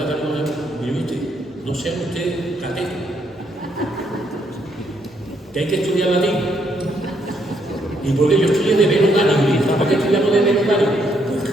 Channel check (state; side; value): normal; both; correlation 0.73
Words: mire usted, no sean ustedes catetos. Que hay que estudiar latín. ¿Y por qué yo estudié de Velo Dani? ¿Por qué estudiamos de Velo Dani? Pues